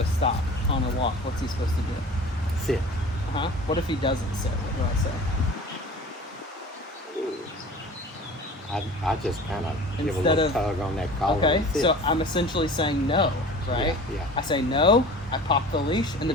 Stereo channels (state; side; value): normal; both; correlation 0.40